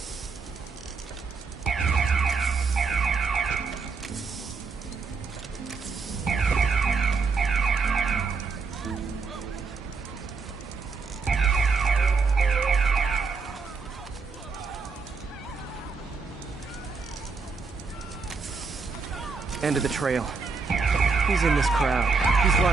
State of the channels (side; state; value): left; quieter; 4.7 dB